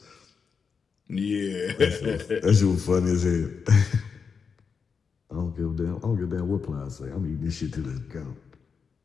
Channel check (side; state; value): right; quieter; 5.8 dB